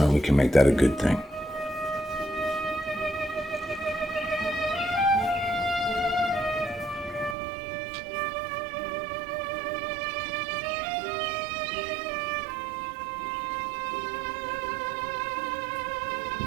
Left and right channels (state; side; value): drops out; left; at 7.4 s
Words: we can make that a good thing.